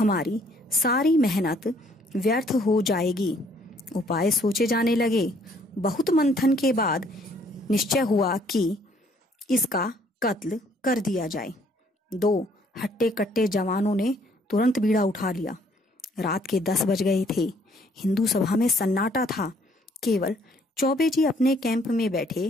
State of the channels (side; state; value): both; normal; correlation 0.63